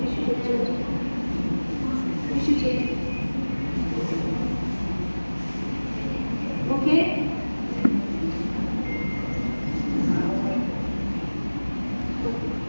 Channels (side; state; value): both; inverted; correlation -1.00